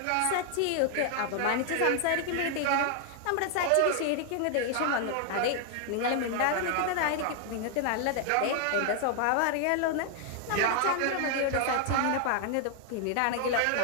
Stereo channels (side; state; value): both; different; correlation 0.00